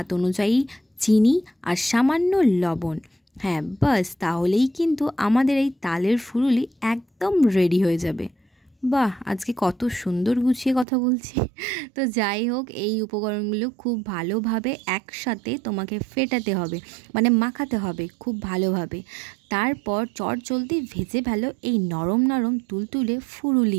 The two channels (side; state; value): left; drops out; at 10.9 s